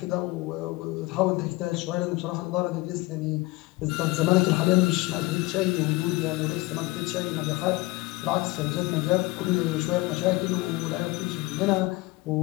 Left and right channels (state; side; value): quieter; right; 21.8 dB